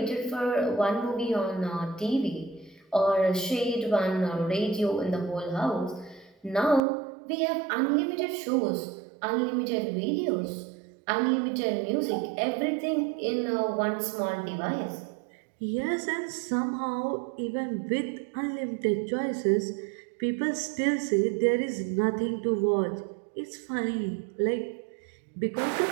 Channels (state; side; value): drops out; left; at 6.8 s